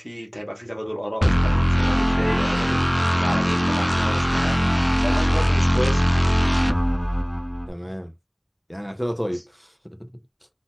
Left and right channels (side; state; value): both; identical; correlation 1.00